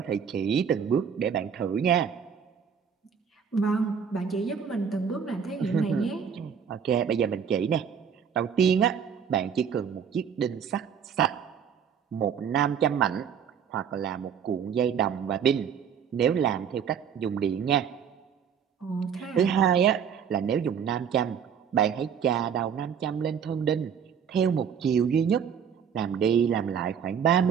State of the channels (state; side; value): quieter; left; 7.5 dB